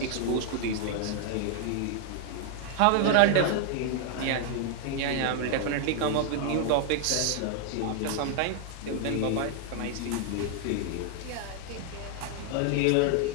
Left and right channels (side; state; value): both; different; correlation 0.00